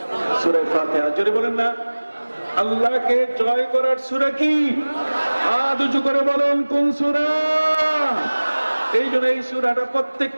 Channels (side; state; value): both; inverted; correlation -1.00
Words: সূরা ফাতিহা। জোরে বলেন না, আল্লাহকে জয় করার সূরা কি? হাত উঁচু করে বলেন, কোন সূরা? এই জন্য এই সূরাটা